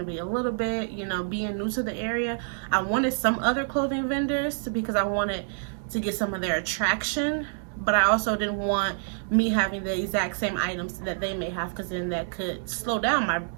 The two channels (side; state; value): left; silent; digital silence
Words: be a little bit, you know, being new to the area? I wanted some other clothing vendors because I wanted to get some of their attraction, but I also didn't want me having the exact same items that they may have, because then that could slow down